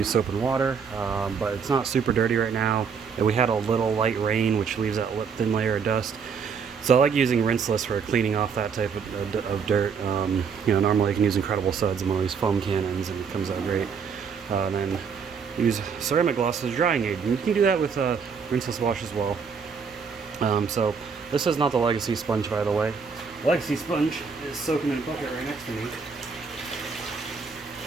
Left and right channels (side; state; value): left; quieter; 6.0 dB